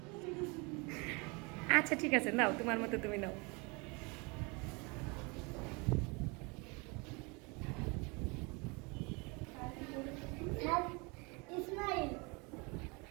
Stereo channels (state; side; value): quieter; left; 29.1 dB